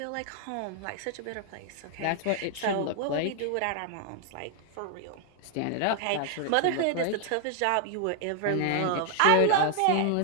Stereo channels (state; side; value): different; both; correlation 0.00